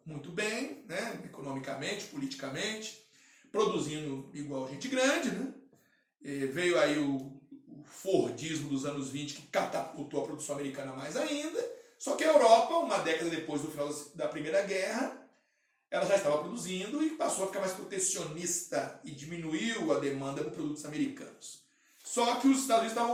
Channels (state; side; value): identical; both; correlation 1.00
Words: muito bem, né? Economicamente, politicamente, produzindo igual gente grande, né? Veio aí o o Fordismo dos anos 20, que catapultou a produção americana mais ainda. Só que a Europa, uma década depois do final da Primeira Guerra, ela já estava produzindo e passou a ficar mais protecionista e diminuiu a demanda por produtos americanos. Só que os Estados Unidos